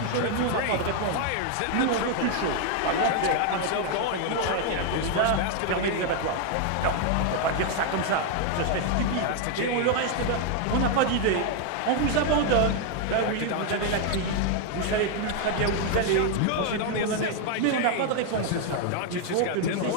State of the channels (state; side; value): different; both; correlation 0.00